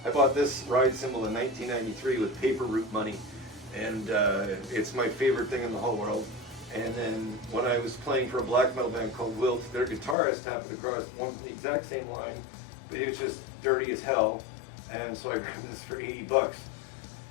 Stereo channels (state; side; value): drops out; right; at 10.2 s